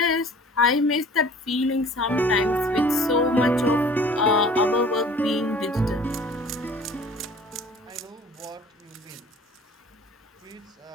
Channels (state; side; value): normal; both; correlation 0.48